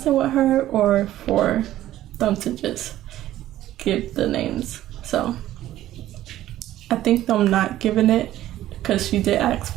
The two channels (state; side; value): quieter; left; 13.8 dB